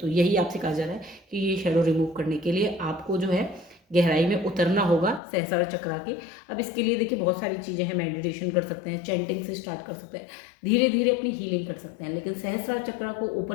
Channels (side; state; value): right; drops out; at 5.2 s